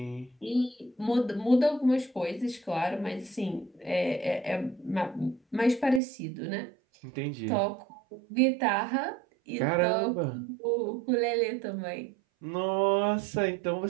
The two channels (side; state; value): left; drops out; at 6.0 s